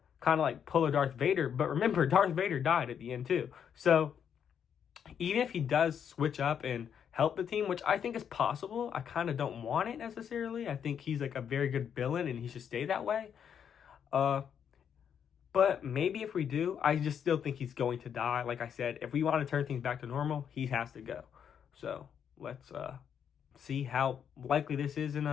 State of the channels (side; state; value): right; quieter; 8.1 dB